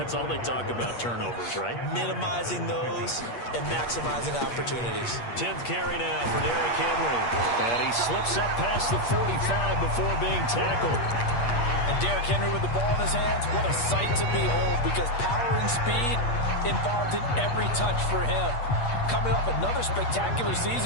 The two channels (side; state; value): right; late; 8.5 ms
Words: all they talk about, turnovers, right? Minimizing those and maximizing opportunities. 10th carry now for Derrick Henry. And he slips up past the 45 before being tackled. And Derrick Henry with the ball in his hands, what a sight to behold, because power and speed involved in every touch for him. Coming off another spectacular